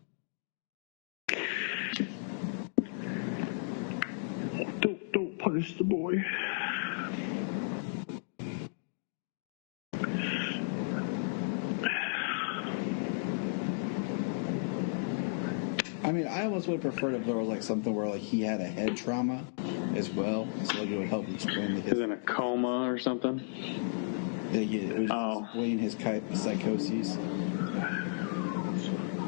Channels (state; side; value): silent; right; digital silence